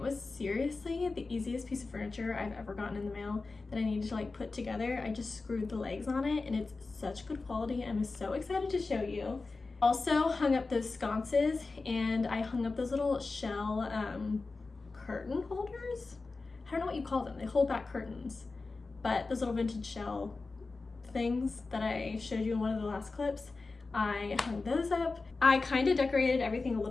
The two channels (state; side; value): quieter; right; 3.8 dB